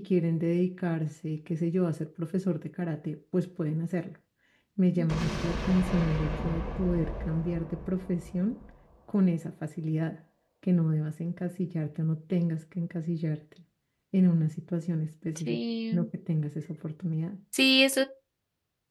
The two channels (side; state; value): both; identical; correlation 1.00